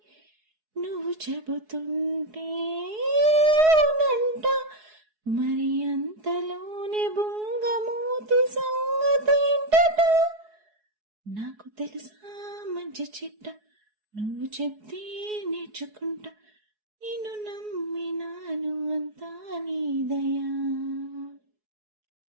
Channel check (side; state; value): left; late; 4.7 ms